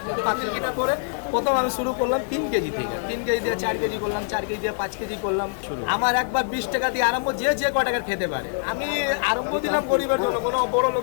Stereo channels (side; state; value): right; silent; digital silence